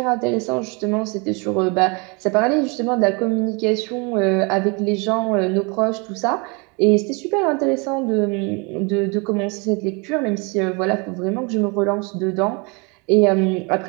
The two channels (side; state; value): left; quieter; 30.8 dB